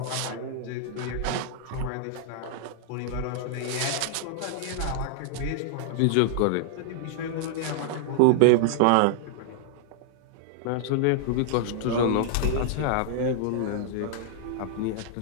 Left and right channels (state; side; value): different; both; correlation -0.01